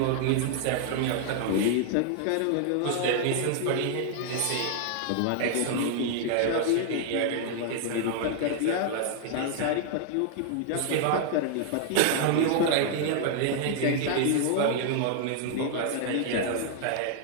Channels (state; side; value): different; both; correlation 0.00